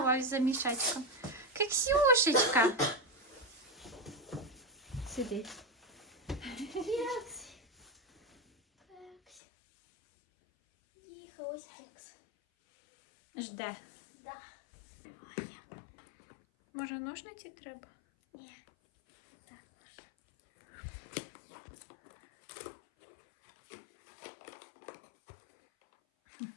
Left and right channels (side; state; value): right; drops out; at 9.4 s